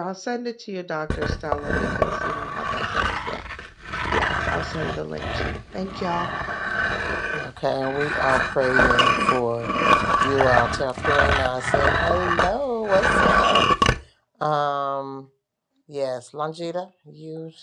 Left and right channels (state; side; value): identical; both; correlation 1.00